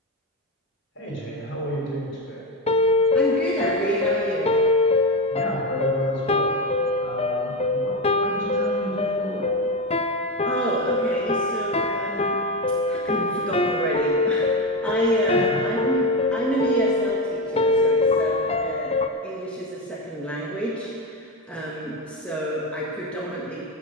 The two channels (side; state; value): both; normal; correlation 0.14